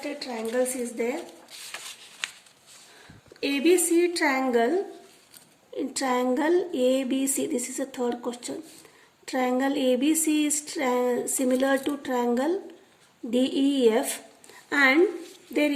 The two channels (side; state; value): both; identical; correlation 1.00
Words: triangles is there. ABC triangle, in triangle ABC, this is a third question. Triangle ABC is similar to triangle DEF, and their